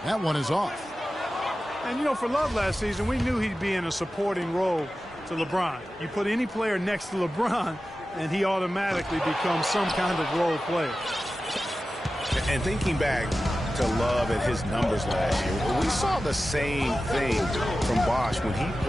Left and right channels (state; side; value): normal; both; correlation 0.94